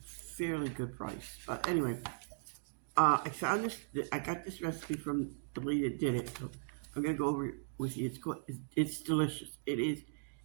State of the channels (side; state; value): left; silent; digital silence